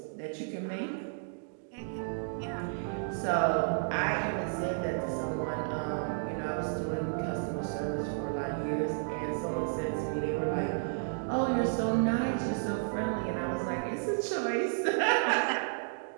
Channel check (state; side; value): silent; left; digital silence